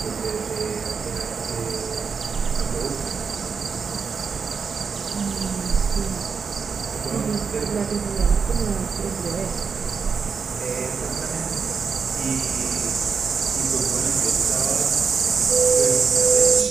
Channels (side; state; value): left; quieter; 5.7 dB